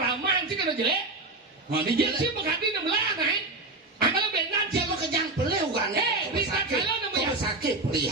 ci kana jelek mandi yen ci bekati nemlah kan akal benan ci mau kejang peleu kan bisa kalau namanya sakit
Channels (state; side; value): quieter; left; 3.1 dB